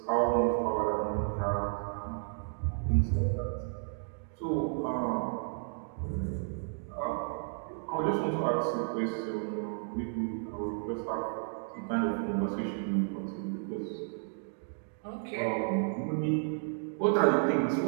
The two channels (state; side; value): silent; left; 56 dB below the other